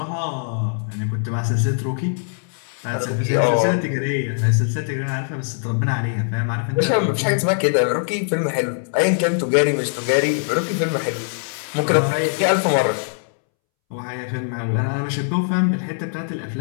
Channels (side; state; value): right; silent; 65 dB below the other